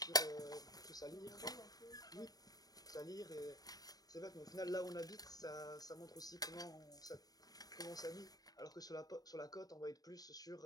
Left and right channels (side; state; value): right; late; 0.18 ms